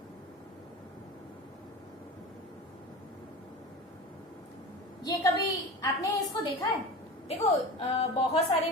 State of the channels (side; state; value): both; normal; correlation 0.31